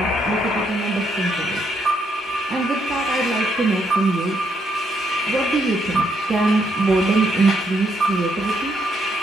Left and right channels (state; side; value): normal; both; correlation 0.75